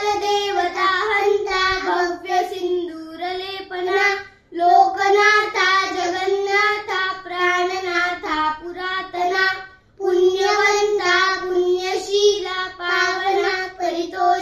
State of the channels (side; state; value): both; identical; correlation 1.00